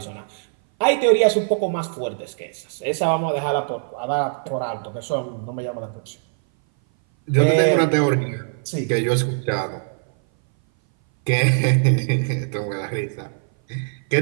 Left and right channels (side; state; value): left; silent; 59 dB below the other